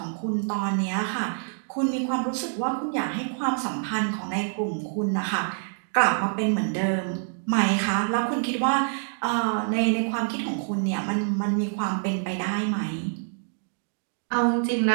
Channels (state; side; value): silent; left; digital silence